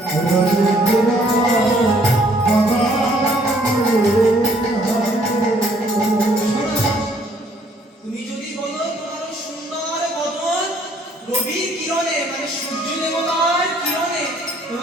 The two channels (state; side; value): normal; both; correlation 0.63